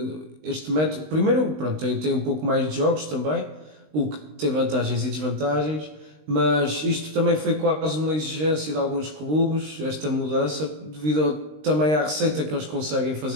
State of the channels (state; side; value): late; left; 19 ms